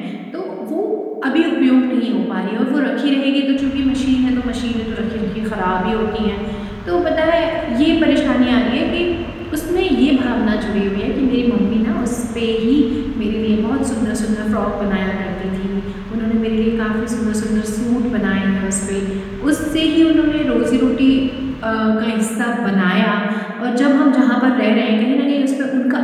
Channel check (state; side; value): identical; both; correlation 1.00